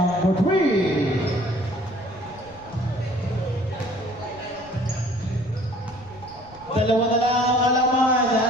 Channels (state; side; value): noise; left; rumble, 22 dB below the sound